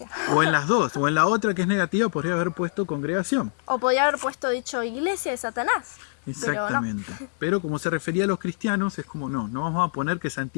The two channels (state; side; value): silent; right; digital silence